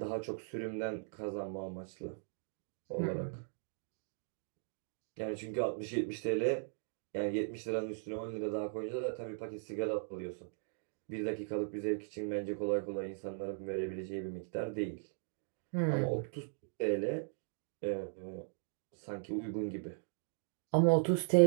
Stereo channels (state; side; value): silent; left; digital silence